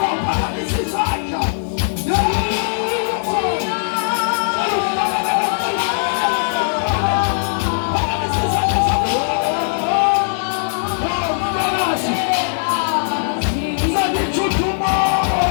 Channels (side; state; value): right; silent; digital silence